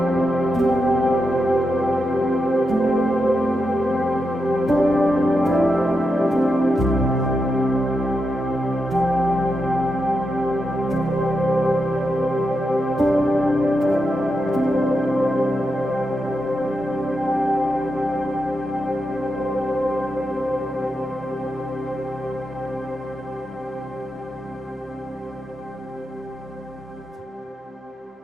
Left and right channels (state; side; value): normal; both; correlation 0.86